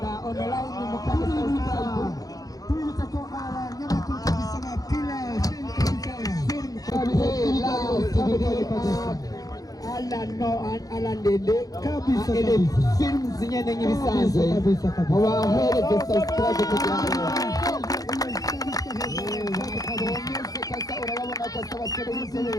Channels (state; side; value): late; right; 0.18 ms